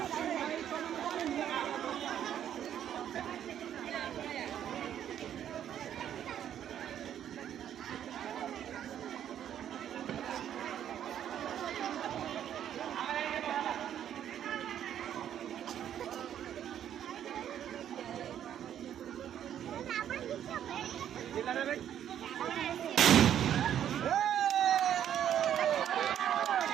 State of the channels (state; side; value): quieter; left; 10.1 dB